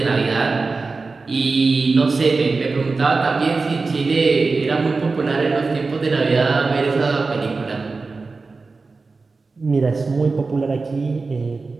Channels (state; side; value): quieter; left; 4.0 dB